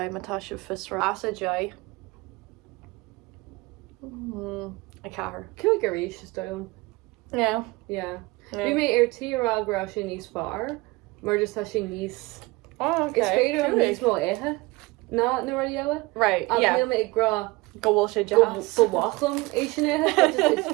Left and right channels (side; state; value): left; quieter; 22.8 dB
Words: matá se fisra as a jai. A cahar. Cú go ríis is dom. Yeah. Yeah. Bhí mé ar tírágrá sin níos fearr, mar just tá sin níos... Oh, okay. Is féidir an Cúig. níos mó éthe? Na ra eile? Right, Ach yeah. níl mé ag grá Go bhfuil sé go jazz. bhachlam é sin éthe, is